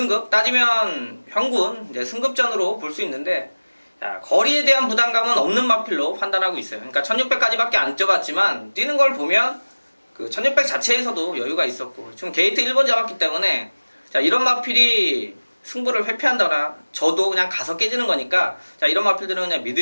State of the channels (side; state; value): both; inverted; correlation -1.00